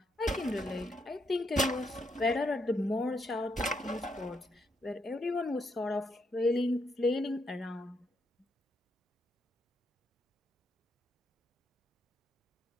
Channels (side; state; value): both; normal; correlation 0.78